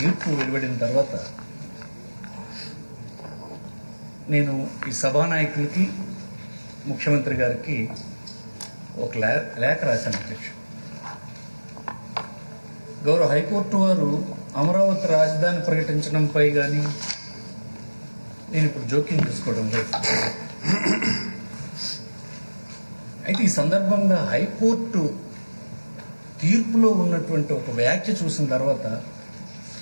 వెలువడిన తర్వాత నేను ఈ సభానాయకులకి ముఖ్యమంత్రి గారికి ఒక లేఖ రాశాను అధ్యక్ష. గౌరవ హైకోర్టు వారు అమరావతి రాజధాని ప్రకటించడంపై కానీ నేను ఇప్పుడు జోక్యం చేసుకోవడం లేదు. అయితే ఈ సందర్భంగా హైకోర్టు తీర్పులో ఉన్నటువంటి ఒక వ్యాఖ్య చూసిన తర్వాత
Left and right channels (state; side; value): inverted; both; correlation -1.00